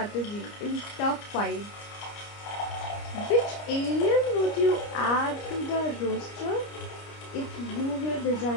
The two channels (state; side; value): late; right; 29 ms